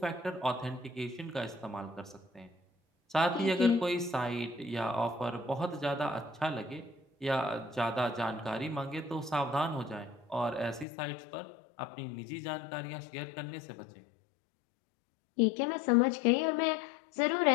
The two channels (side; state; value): right; drops out; at 10.9 s